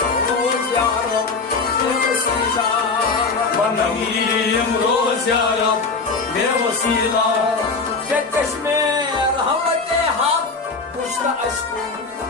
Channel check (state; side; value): quieter; right; 4.2 dB